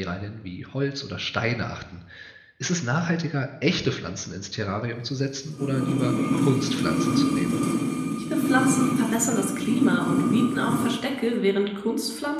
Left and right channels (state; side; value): identical; both; correlation 1.00